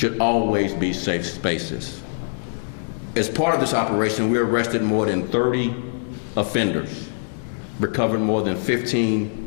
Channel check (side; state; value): right; silent; digital silence